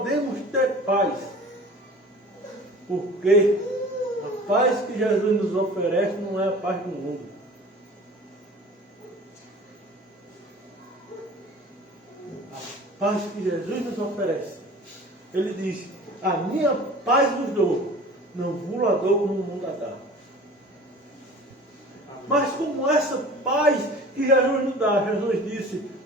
ter paz? Porque a paz que Jesus nos oferece não é a paz do mundo. A paz que Jesus nos oferece. Ele diz, a minha paz vos dou, não vos la dou como o mundo a dá. Mas como essa paz que Jesus nos dá, Jesus disse,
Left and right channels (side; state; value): both; normal; correlation 0.42